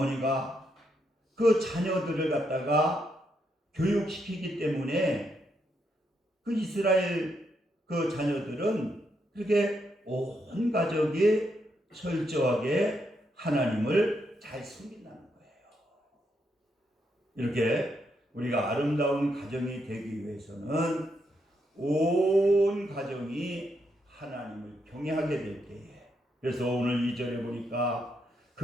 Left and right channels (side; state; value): both; normal; correlation 0.79